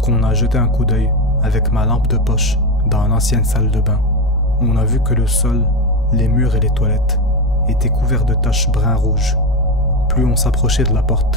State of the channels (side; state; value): left; noise; hum, 16 dB below the sound